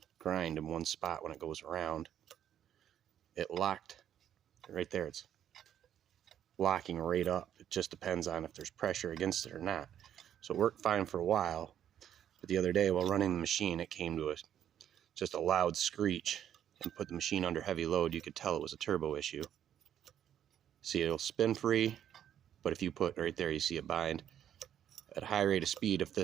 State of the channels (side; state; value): left; quieter; 10.1 dB